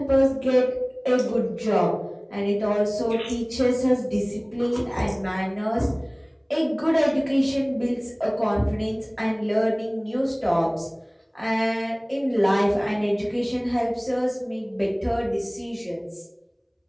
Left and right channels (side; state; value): both; identical; correlation 1.00